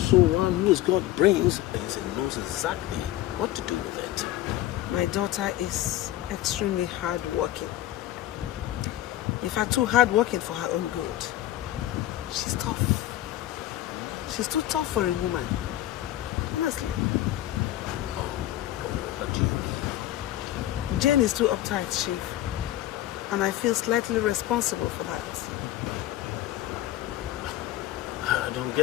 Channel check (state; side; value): quieter; right; 14.3 dB